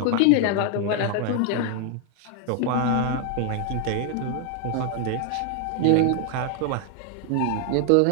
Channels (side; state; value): both; different; correlation 0.00